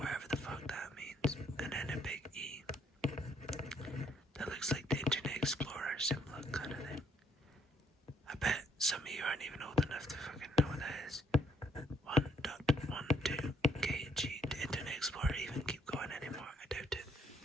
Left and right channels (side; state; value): both; normal; correlation 0.68